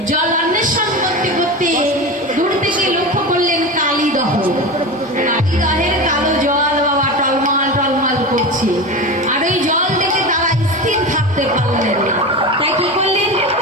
জল অন্বেষণ করতে করতে দূর থেকে লক্ষ্য করলেন কালীদহ। কালীদহের কালো জল বাবা টলমল টলমল করছে, আর ওই জল দেখে তারা স্থির থাকতে পারলেন না। তাই কি করলেন,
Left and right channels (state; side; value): normal; both; correlation 0.25